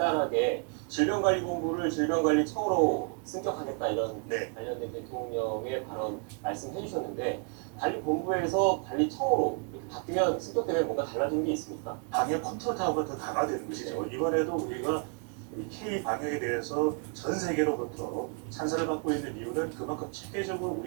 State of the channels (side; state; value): left; quieter; 37.9 dB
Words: 질병관리본부를 질병관리청으로 승격하겠다 이런 네. 관련된 대통령의 발언 말씀해 주셨는데 관리본부에서 관리청으로 이렇게 바뀌면 승격되면 뭔가 달라지는 게 있습니까? 방역 컨트롤 타워가 더 강화되는 것이죠. 이번에도 우리가 이 K 방역에 대해서 전 세계로부터 찬사를 받고 있는 이유는 그만큼 체계적으로